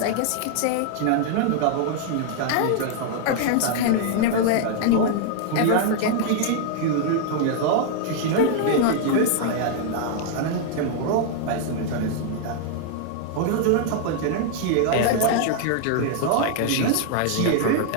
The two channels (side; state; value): both; different; correlation 0.00